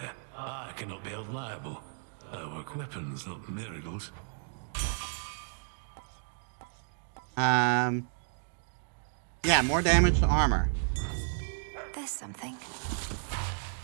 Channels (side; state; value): left; silent; 56 dB below the other